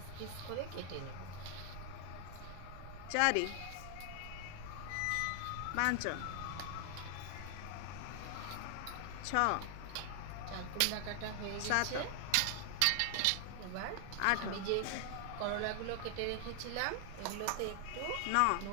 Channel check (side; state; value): both; different; correlation 0.00